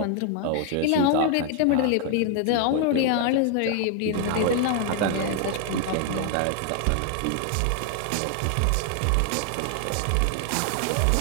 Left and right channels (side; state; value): both; different; correlation 0.00